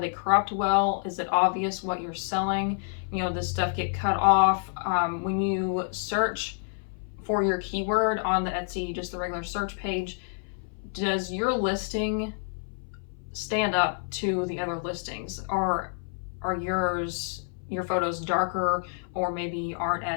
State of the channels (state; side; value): silent; right; 57 dB below the other